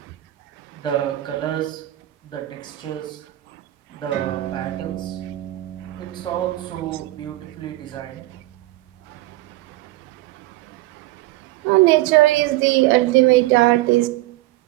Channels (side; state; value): left; quieter; 17.5 dB